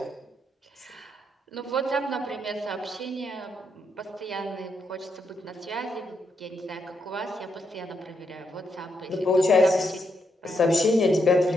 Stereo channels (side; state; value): both; normal; correlation 0.80